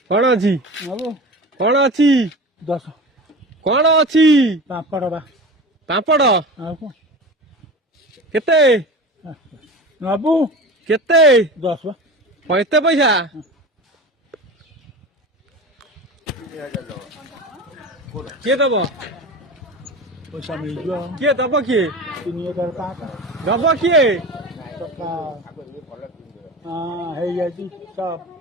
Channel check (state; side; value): normal; both; correlation 0.32